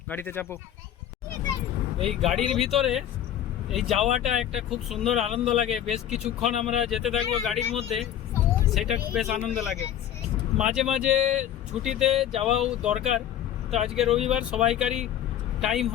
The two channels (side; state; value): right; quieter; 10.8 dB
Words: গাড়িতে চাপো। এই গাড়ির ভিতরে এই যাওয়াটা একটা খুব সুন্দর আনন্দ লাগে। বেশ কিছুক্ষণ আমরা যেতে থাকবো গাড়ির মধ্যে, সেটা বেশ আনন্দ লাগে। মাঝে মাঝে ছুটিতে যাওয়াও দরকার। তো আজকে রবিবার, সবাইকারই টাইম